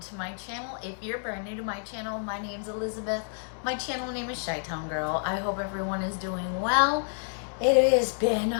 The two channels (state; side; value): silent; right; digital silence